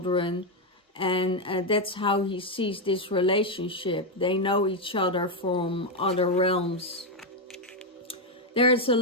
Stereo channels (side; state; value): both; normal; correlation 0.03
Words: and that's how he sees this relationship. They know each other from other realms. There is a